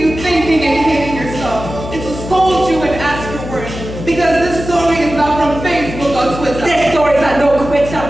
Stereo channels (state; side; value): noise; left; hum, 9 dB below the sound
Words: thinking and hating yourself. It will scold you and ask your worth. Because this story is not from Facebook or Twitter. This story is a no quitter